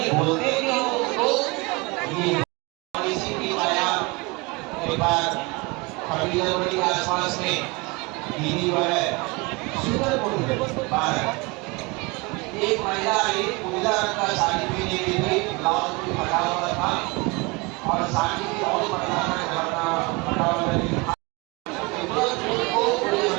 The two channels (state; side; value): quieter; left; 26.2 dB